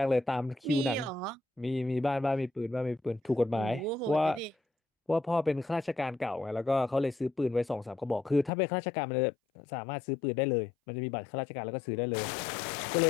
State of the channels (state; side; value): drops out; right; at 8.5 s